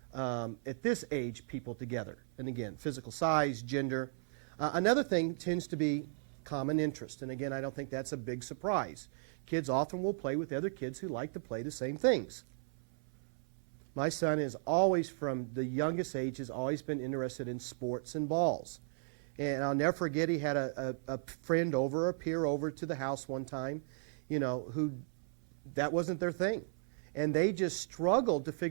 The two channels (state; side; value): silent; left; 54 dB below the other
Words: at this age, people together. And again, physical size, gender. Another thing tends to be common interest. And again, I don't think that's a big surprise. Kids often will play with other kids who like to play the same things. My son is always, from the youngest age, has always been interested in sports and balls. And I'll never forget, he had a friend over, a peer over to the house one time, who that wasn't their thing. And they just struggled to